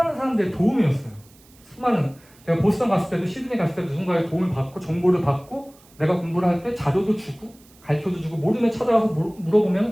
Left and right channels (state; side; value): noise; right; hiss, 28 dB below the sound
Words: 사람들의 도움이었어요. 수많은 제가 보스턴 갔을 때도 시드니 갔을 때도 누군가의 도움을 받고 정보를 받고 내가 공부를 할 때 자료도 주고 가르쳐도 주고 모르면 찾아가서 물어보면